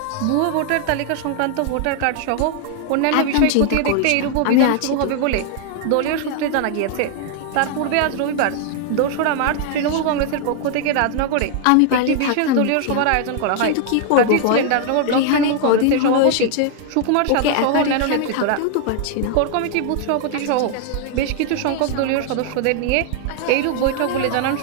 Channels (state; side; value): different; both; correlation 0.00